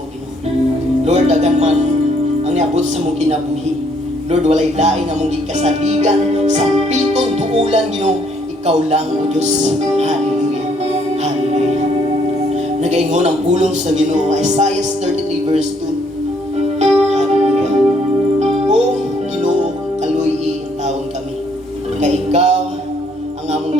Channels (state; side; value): normal; both; correlation 0.68